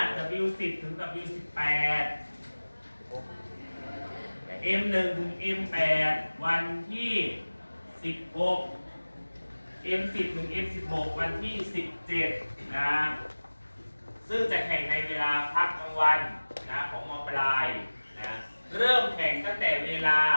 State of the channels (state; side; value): inverted; both; correlation -1.00